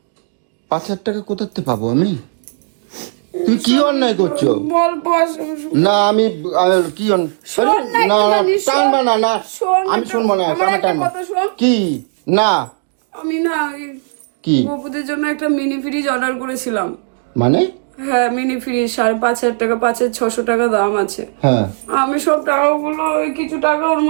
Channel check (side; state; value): left; silent; digital silence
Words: 5,000 টাকা কোথাতে পাবো আমি? তুমি কি অন্যায় করছো? বল বস। না আমি কি শোন না একটুখানি, শোন। না শোন, আমি শুনবো না। আমার একটা কথা শোন। কি? না আমি না কি? গপুদের জন্য একটা মিনি ফ্রিজ অর্ডার করেছিলাম। মানে হ্যাঁ মিনি ফ্রিজ 5,500 টাকা, 5,600 টাকা দাম আছে। হ্যাঁ, আমি সব টাকাগুলো ওই কিছু টাকা ওর